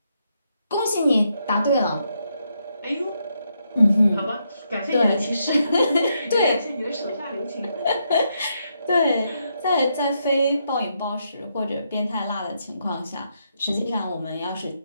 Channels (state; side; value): inverted; both; correlation -0.79